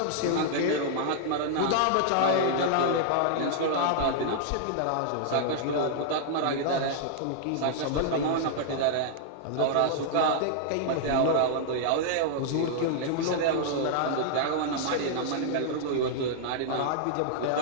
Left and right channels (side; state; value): both; different; correlation -0.01